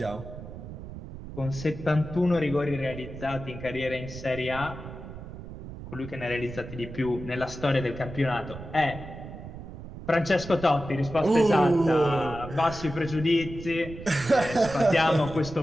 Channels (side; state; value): right; noise; rumble, 12 dB below the sound